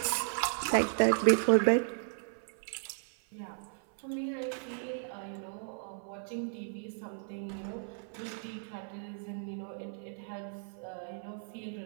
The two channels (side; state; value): left; silent; 55 dB below the other